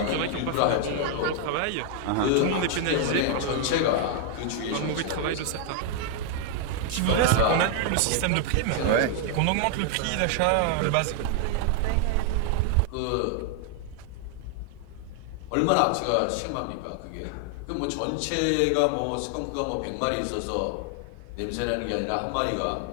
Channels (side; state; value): both; different; correlation 0.00